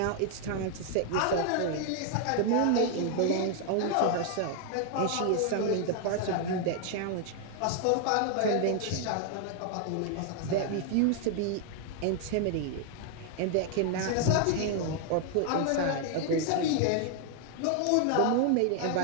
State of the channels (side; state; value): both; different; correlation 0.00